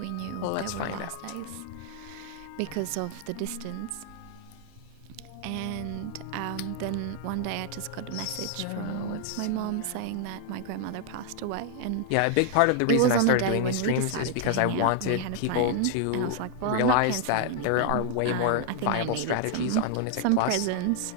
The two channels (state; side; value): different; both; correlation 0.00